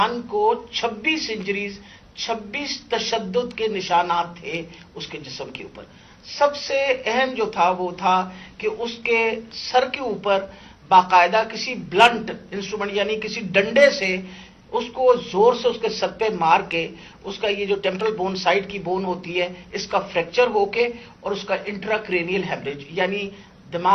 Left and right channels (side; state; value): both; identical; correlation 1.00